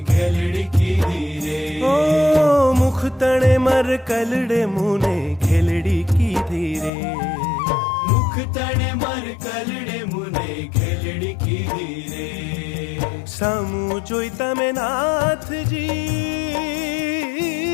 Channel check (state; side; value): drops out; right; at 6.9 s